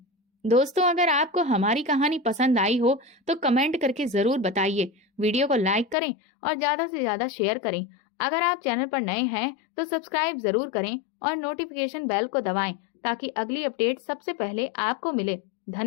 दोस्तों, अगर आपको हमारी कहानी पसंद आई हो तो कमेंट करके जरूर बताइए। वीडियो को लाइक करें और ज्यादा से ज्यादा शेयर करें। अगर आप चैनल पर नए हैं तो सब्सक्राइब जरूर करें और नोटिफिकेशन बेल को दबाएं ताकि अगली अपडेट सबसे पहले आपको मिले।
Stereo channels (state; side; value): drops out; right; at 6.0 s